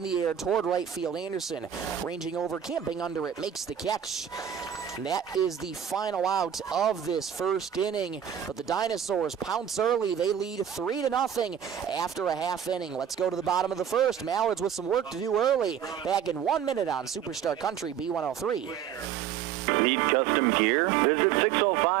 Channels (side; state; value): left; quieter; 9.0 dB